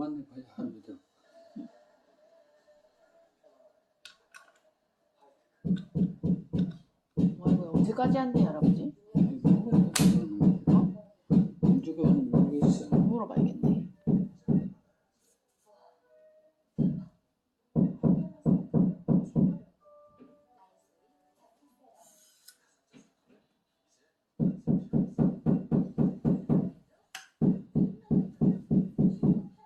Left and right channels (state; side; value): identical; both; correlation 1.00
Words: 합니다. 뭐 이거 언제까지 한대 할아버지? 언제가 모르겠어. 물어봐야겠네.